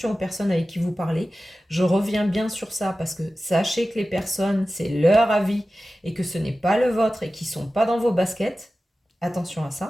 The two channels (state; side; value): normal; both; correlation 0.95